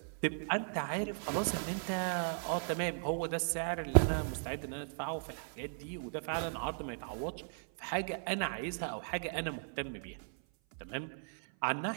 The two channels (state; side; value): silent; left; 53 dB below the other